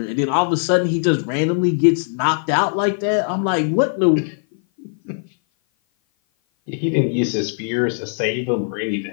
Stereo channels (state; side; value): silent; right; 56 dB below the other